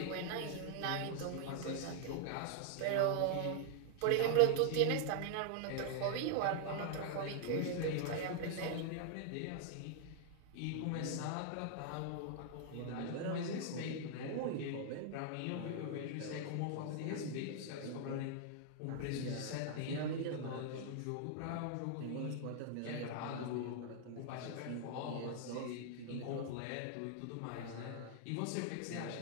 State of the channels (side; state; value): both; different; correlation 0.00